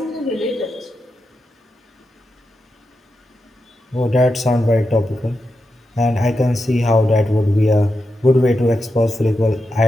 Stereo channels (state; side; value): normal; both; correlation 0.88